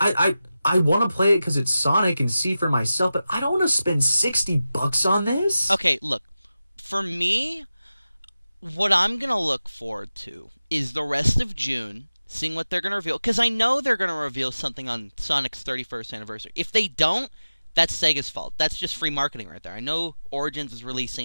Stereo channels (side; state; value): both; inverted; correlation -0.95